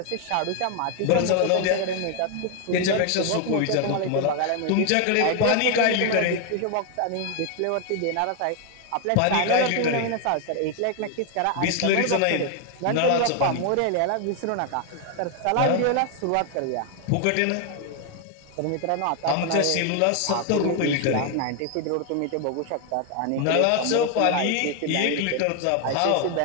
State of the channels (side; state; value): both; different; correlation 0.01